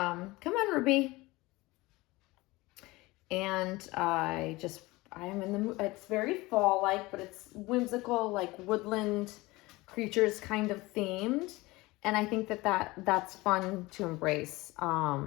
on, Ruby. And I am in the mood. It's very fall-like, but it's whimsical, like woodland creatures kind of themed. And I think that's fun to embrace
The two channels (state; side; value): quieter; right; 21.2 dB